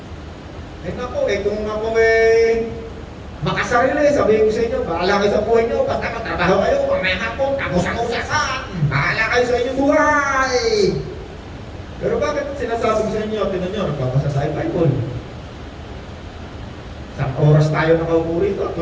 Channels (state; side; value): identical; both; correlation 1.00